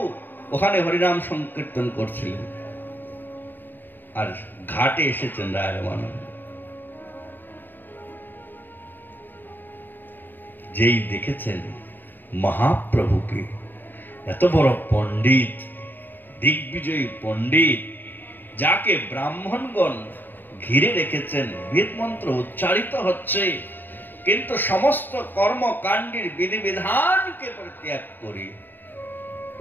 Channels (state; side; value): late; right; 0.092 ms